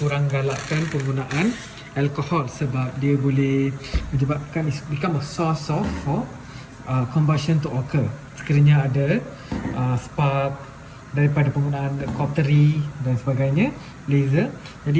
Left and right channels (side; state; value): both; identical; correlation 1.00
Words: galakkan penggunaan alkohol sebab dia boleh menyebabkan become a source of combustion to occur. Sekiranya ada spark daripada penggunaan cautery dan sebagainya, laser.